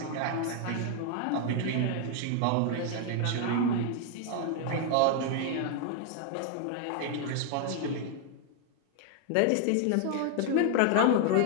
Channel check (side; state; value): both; different; correlation 0.00